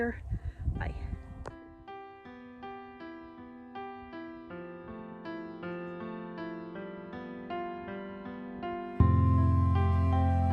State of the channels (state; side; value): identical; both; correlation 1.00